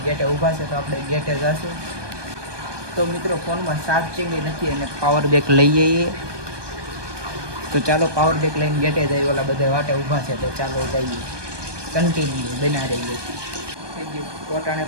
ગેટે ઊભા છે, તો આપણે ગેટે જઈશું. તો મિત્રો, ફોનમાં ચાર્જિંગ નથી અને પાવર બેક લઈ જઈએ. તો ચાલો પાવર બેક લઈને ગેટે જઈએ. ઓલા બધા વાટે ઊભા છે, તો ચાલો જઈએ. કન્ટિન્યુ બના રહીએ. થઈ ગયું પોતાને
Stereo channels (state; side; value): late; left; 1.2 ms